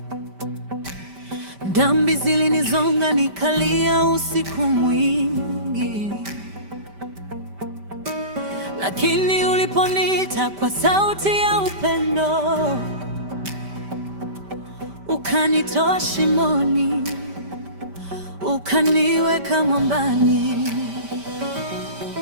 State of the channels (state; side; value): late; left; 5.1 ms